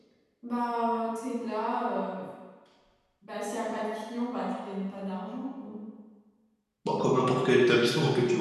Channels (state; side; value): identical; both; correlation 1.00